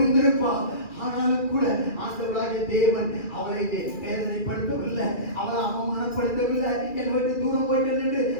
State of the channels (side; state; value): right; late; 2.3 ms